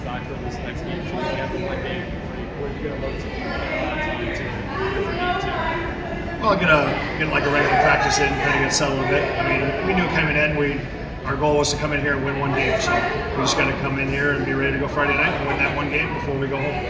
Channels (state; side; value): identical; both; correlation 1.00